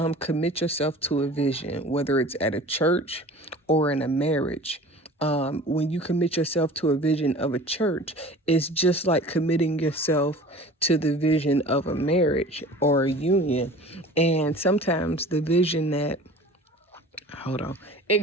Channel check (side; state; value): both; normal; correlation 0.42